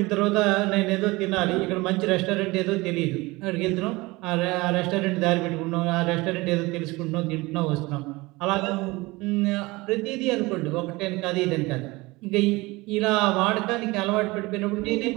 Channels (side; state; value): left; quieter; 22.3 dB